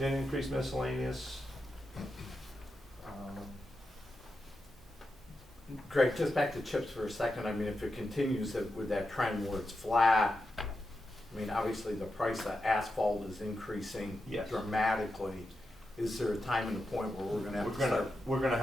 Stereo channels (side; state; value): both; normal; correlation 0.88